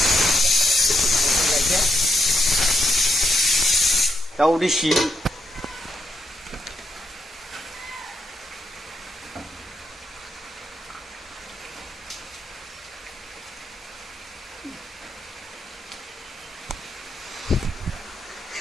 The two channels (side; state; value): both; normal; correlation 0.80